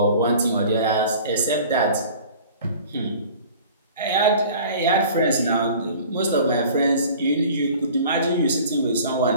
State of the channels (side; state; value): both; inverted; correlation -0.45